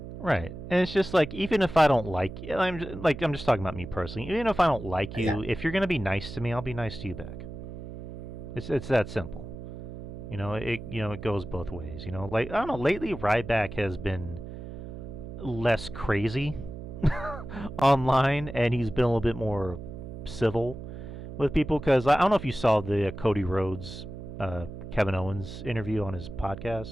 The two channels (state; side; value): noise; right; hum, 10 dB below the sound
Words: Right, and it's just like, even if I don't like you, I'm just talking about me personally. Even if I don't like you, if you're gonna be nice to me, I'll be nice to you back. It's that simple. It goes both ways. Like, I don't know. Lately, Ryback has been less crazy online, and he's been a little bit more civil with people. Because I don't know if you saw the Cody Rhodes, Kevin Owens interview on his